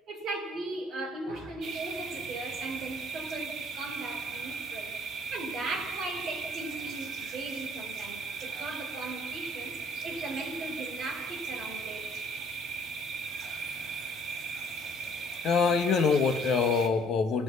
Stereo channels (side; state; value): both; normal; correlation 0.59